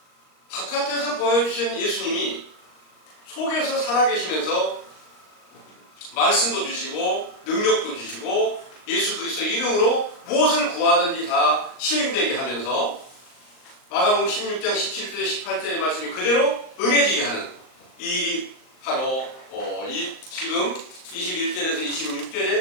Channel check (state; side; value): late; right; 38 ms